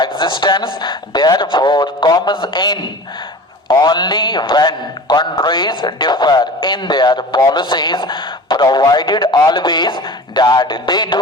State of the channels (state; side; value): normal; both; correlation 0.37